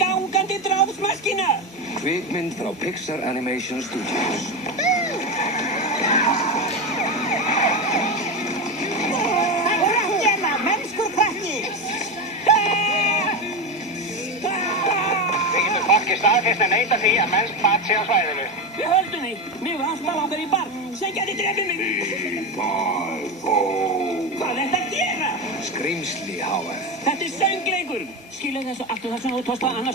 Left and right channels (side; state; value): both; normal; correlation 0.17